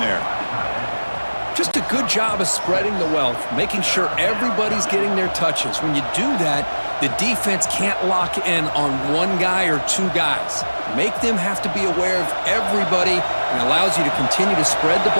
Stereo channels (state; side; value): inverted; both; correlation -1.00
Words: Just a good job of spreading the wealth, making sure everybody's getting their touches. When you do that, the defense can't lock in on one guy or two guys. Make them have to be aware of everybody, and allows you to continue to spread the